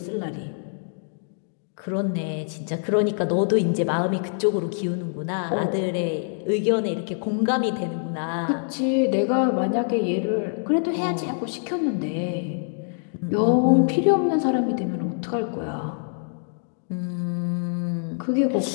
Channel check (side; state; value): right; silent; digital silence